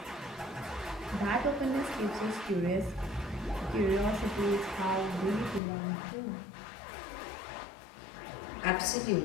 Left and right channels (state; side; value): drops out; right; at 5.6 s